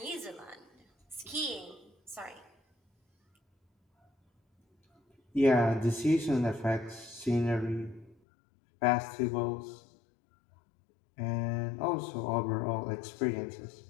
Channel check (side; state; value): right; drops out; at 8.2 s